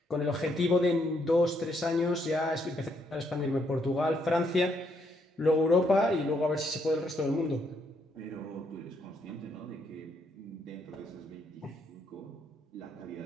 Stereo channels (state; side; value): normal; both; correlation 0.74